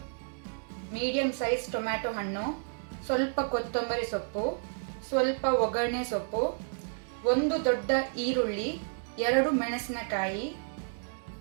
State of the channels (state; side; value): silent; left; digital silence